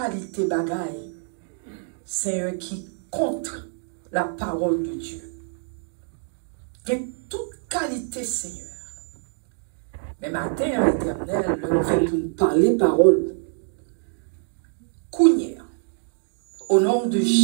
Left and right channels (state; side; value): silent; left; digital silence